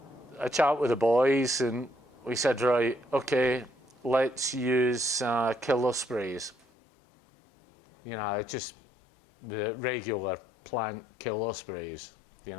chat with the boys, and we said, right, okay, let's use killer sprays. Just the regular plant killer sprays,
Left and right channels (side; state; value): right; drops out; at 6.7 s